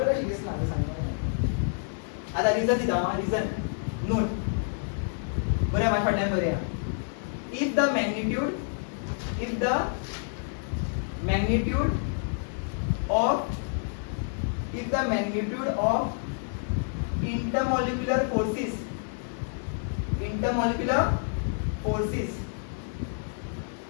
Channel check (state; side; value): silent; right; digital silence